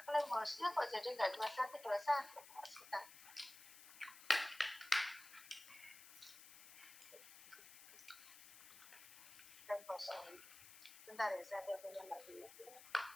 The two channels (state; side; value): noise; left; hiss, 16 dB below the sound